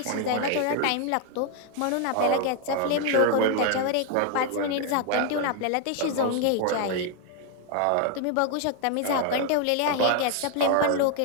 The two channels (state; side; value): different; both; correlation 0.00